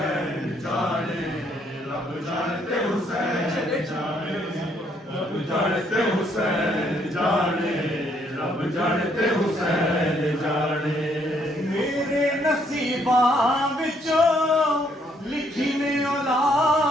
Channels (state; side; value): normal; both; correlation 0.69